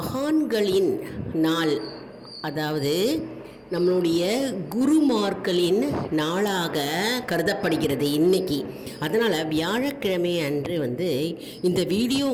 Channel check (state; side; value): identical; both; correlation 1.00